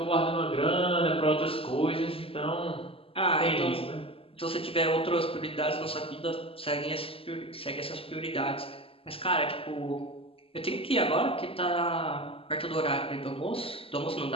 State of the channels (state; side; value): late; right; 0.27 ms